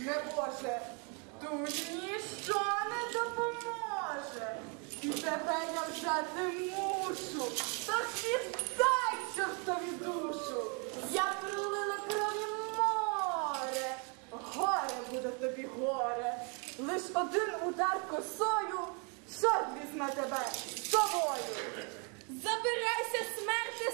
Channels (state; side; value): quieter; left; 35.4 dB